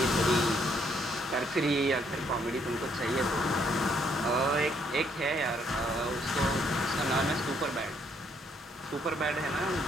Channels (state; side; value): normal; both; correlation 0.70